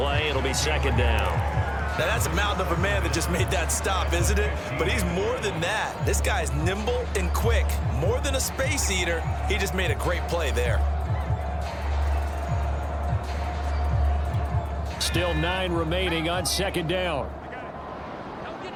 It'll be 2nd down. Now, that's a mountain of a man that just made that stop, isn't it? But he's more than that. This guy's nimble and quick. More than a space eater. He just made a great play there. Still 9 remaining on 2nd down.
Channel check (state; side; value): identical; both; correlation 1.00